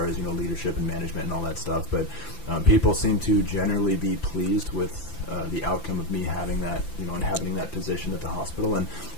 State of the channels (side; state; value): right; late; 5.9 ms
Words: as, you know, leadership and management and all that stuff. But people seem to generally be pleased with the outcome of me having that, you know, and having that position at the hospital, and